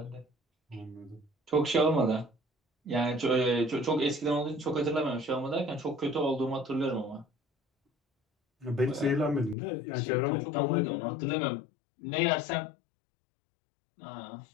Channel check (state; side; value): drops out; right; at 9.6 s